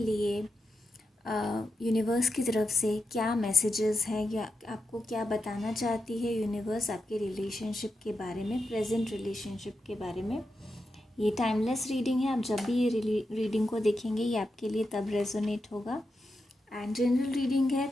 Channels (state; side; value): normal; both; correlation 0.88